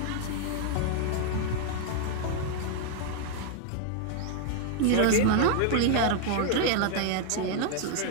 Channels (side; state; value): both; different; correlation 0.00